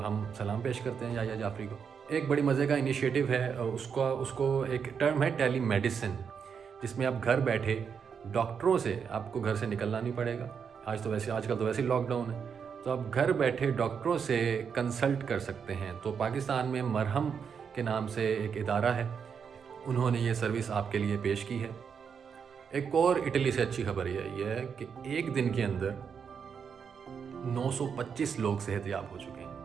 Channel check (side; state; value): left; quieter; 6.7 dB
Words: ہم سلام پیش کرتے ہیں یحییٰ جعفری کو۔ ایک بڑی مزے کا انیشیٹو ہے، اس کو ایک ٹرم ہے ٹیلی میڈیسن، جس میں آپ گھر بیٹھے ڈاکٹروں سے، آپ کو گھر سے نکلنا نہیں پڑے گا، آج کل تو ویسے ہی لاک ڈاؤن ہے، تو آپ گھر بیٹھے ڈاکٹروں سے کنسلٹ کر سکتے ہیں۔ تو پاکستان میں مرہم کے نام سے ایک ادارہ ہے، انہوں نے یہ سروس آپ کے لیے پیش کی ہے۔ ایک اور اٹلی سے اچھی خبر یہ ہے کہ ایک دن کے اندر 925 لوگ صحت یاب ہو چکے ہیں،